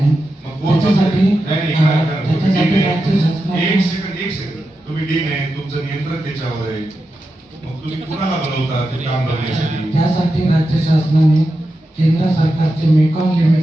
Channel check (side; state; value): both; normal; correlation 0.89